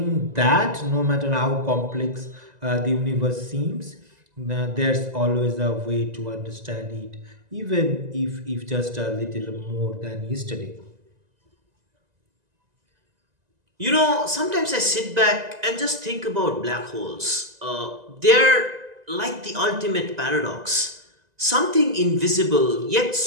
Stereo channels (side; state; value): left; late; 1.9 ms